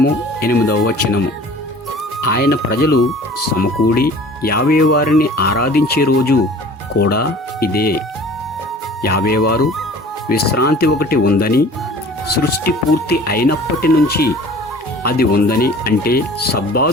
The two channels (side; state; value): both; normal; correlation 0.46